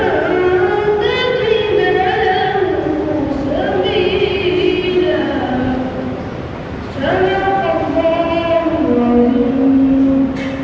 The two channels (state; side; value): identical; both; correlation 1.00